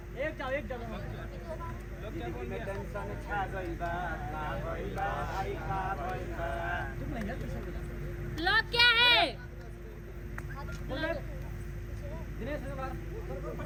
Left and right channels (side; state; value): both; identical; correlation 1.00